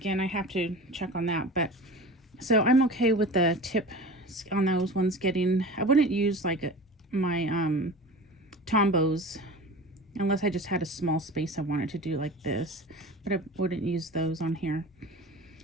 I have to check on that, but so I'm okay with the tip on those ones getting, I wouldn't use like my Tombows unless I just had a small space I wanted to do like this, but I wouldn't use those on here.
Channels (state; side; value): normal; both; correlation 0.35